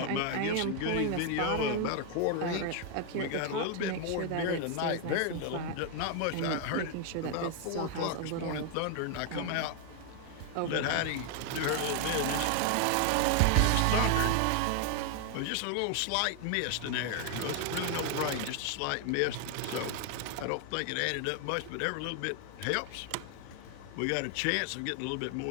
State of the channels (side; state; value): both; different; correlation 0.00